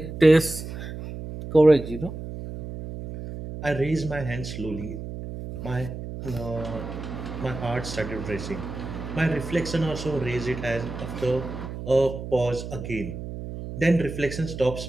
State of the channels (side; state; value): right; noise; hum, 8 dB below the sound